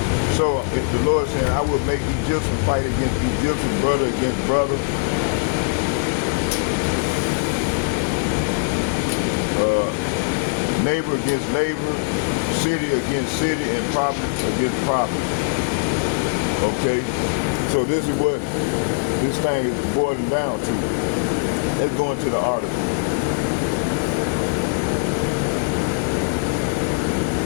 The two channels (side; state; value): right; quieter; 36.0 dB